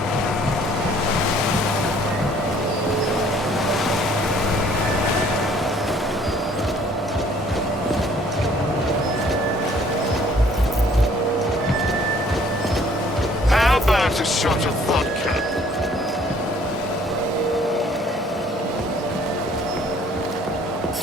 How about a shot of vodka?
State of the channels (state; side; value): normal; both; correlation 0.58